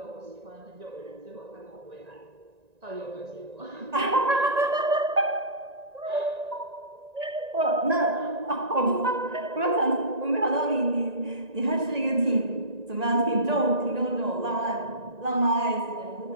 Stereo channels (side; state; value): left; late; 1.9 ms